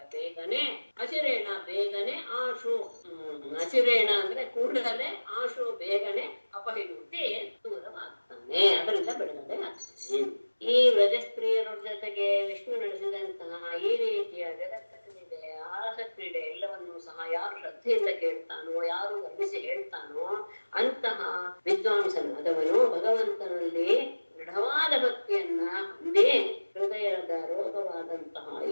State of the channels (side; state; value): both; inverted; correlation -1.00